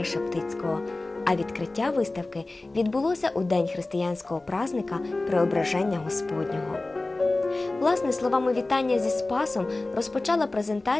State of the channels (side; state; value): right; quieter; 3.0 dB